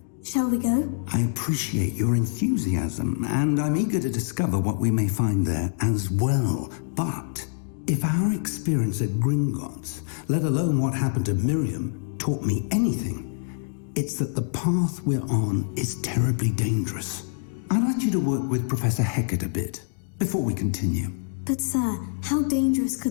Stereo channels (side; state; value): right; silent; digital silence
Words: Shall we go? I appreciate your enthusiasm, and I'm eager to discover what we may find there as well. But if our experience at Gringotts, let alone what happened to Miriam, taught me anything, it's that the path we're on is terribly dangerous. I'd like you to work with Professor Hecat a bit, before we continue. But sir, how dangerous